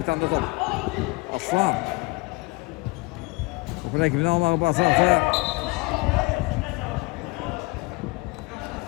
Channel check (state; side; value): quieter; right; 25.1 dB